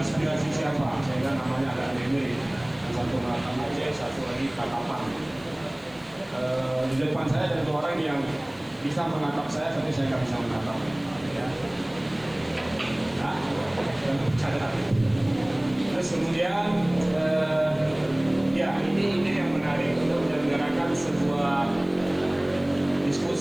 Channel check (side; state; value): left; noise; hiss, 29 dB below the sound